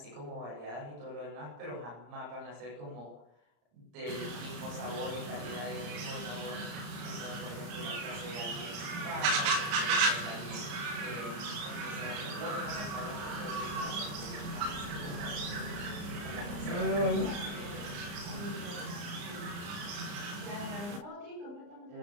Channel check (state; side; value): late; left; 34 ms